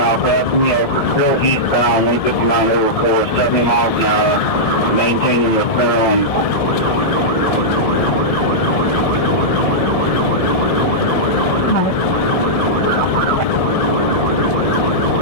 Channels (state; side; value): late; right; 1.7 ms